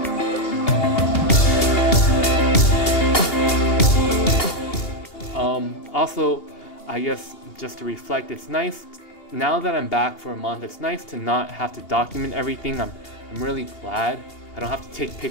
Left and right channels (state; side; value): late; right; 2.8 ms